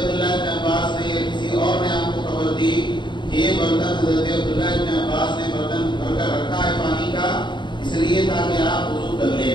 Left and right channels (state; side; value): late; right; 0.22 ms